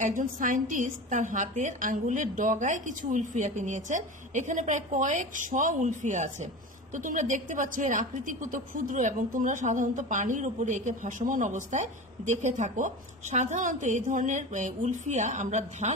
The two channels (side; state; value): both; normal; correlation 0.30